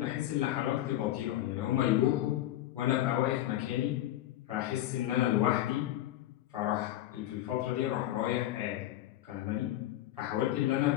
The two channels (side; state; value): right; quieter; 14.0 dB